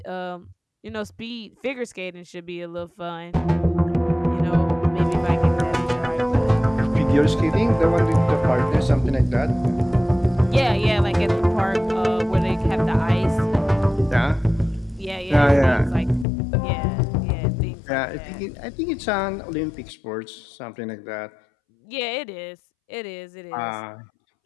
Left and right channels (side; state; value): right; drops out; at 16.2 s